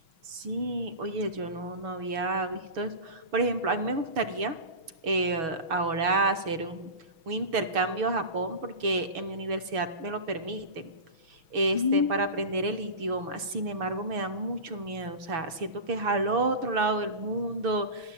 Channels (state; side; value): late; left; 6.2 ms